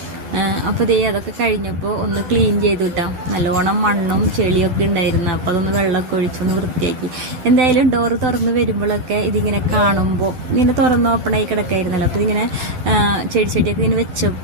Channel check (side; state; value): left; late; 12 ms